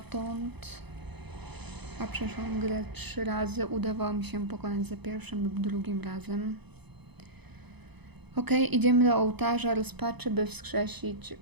A przeszłam grę 3 razy. Udawało mi się pokonać za pierwszym lub drugim razem. Ok, idziemy do ołtarza rozpaczy, by wskrzesić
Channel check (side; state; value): left; late; 0.98 ms